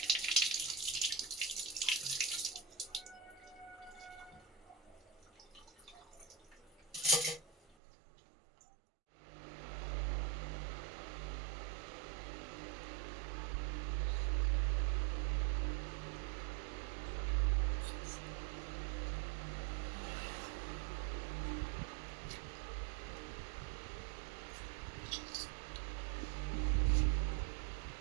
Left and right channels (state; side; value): drops out; left; at 7.8 s